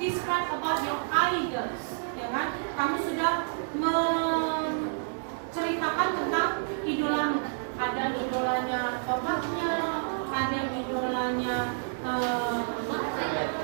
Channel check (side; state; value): left; silent; digital silence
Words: about your idols, ya kan? Kamu sudah menceritakan tentang idolamu. Ada idolanya bapaknya, ada idolanya atlet.